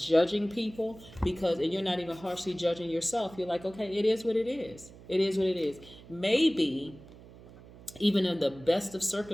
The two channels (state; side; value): noise; right; hum, 20 dB below the sound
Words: people, and you're not even harshly judging yourself. You're like, okay, it is what it is. It is what it is. Maybe even in the best of